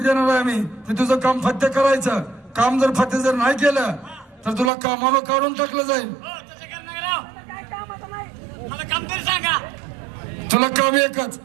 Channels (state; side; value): drops out; left; at 4.7 s